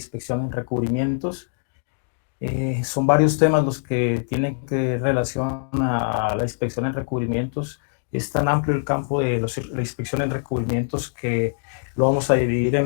en recubrimientos. Son varios temas los que tienen que relación a la inspección en recubrimientos. Es tan amplio el campo de la inspección en recubrimientos que lo vamos a dividir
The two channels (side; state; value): right; silent; digital silence